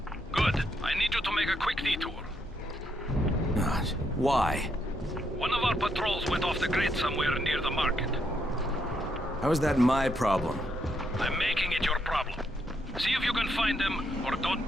Good. I need you to make a quick detour. Gosh, why? One of our patrols went off the grid somewhere near the market. How is that my problem? I'm making it your problem. See if you can find them, or don't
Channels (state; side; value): normal; both; correlation 0.77